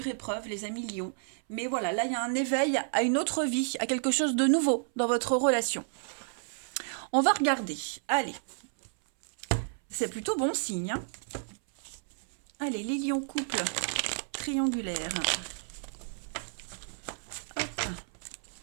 épreuve, les amis lions. Mais voilà, là, il y a un éveil à une autre vie, à quelque chose de nouveau dans votre relation. On va regarder. Allez, c'est plutôt bon signe, hein. Allez, les lions couple triangulaire.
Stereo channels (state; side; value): silent; left; 57 dB below the other